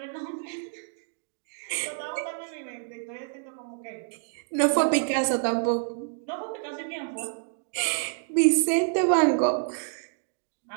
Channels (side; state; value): left; silent; digital silence